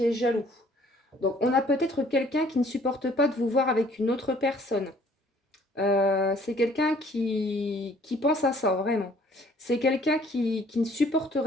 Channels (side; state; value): both; normal; correlation 0.58